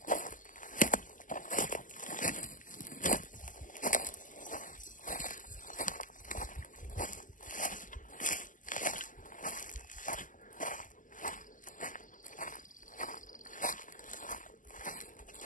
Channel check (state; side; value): late; right; 0.38 ms